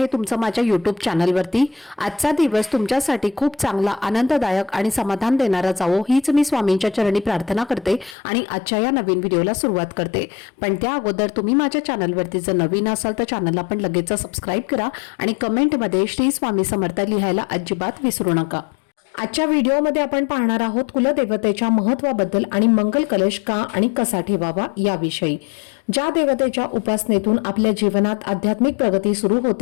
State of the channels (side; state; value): right; drops out; at 8.2 s